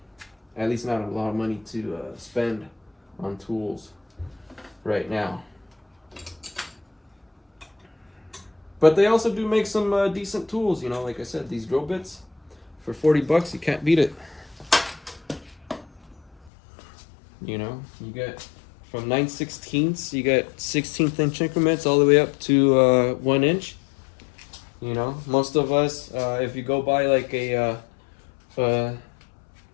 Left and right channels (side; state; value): right; drops out; at 16.5 s